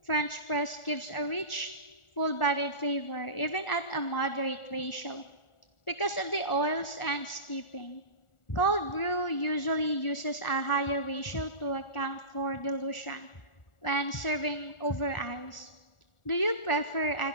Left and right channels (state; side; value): late; right; 1.4 ms